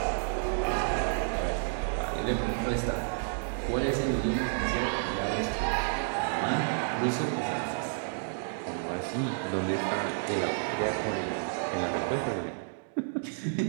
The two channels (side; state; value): left; silent; digital silence